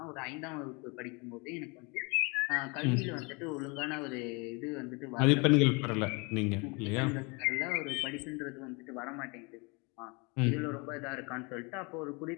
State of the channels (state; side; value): quieter; right; 29.7 dB